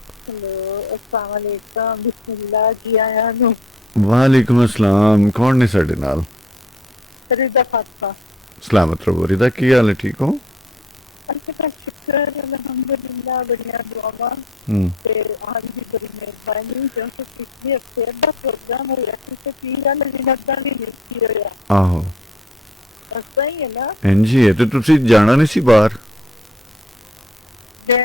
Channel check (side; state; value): both; normal; correlation 0.56